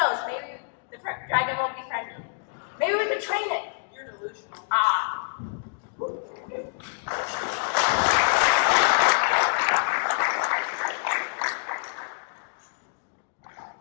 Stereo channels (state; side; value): silent; right; digital silence